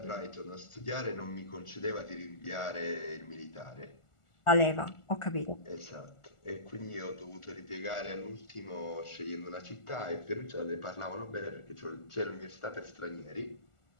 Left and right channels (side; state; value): right; late; 1.4 ms